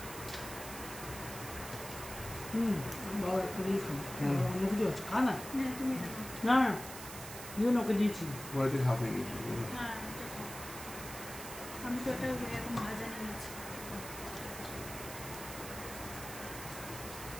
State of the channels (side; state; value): right; noise; hiss, 11 dB below the sound